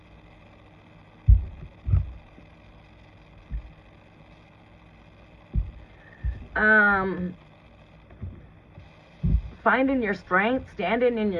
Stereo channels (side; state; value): both; identical; correlation 1.00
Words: Finding your strength, standing in